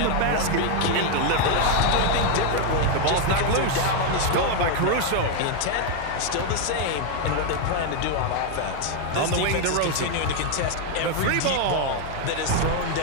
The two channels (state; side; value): different; both; correlation 0.01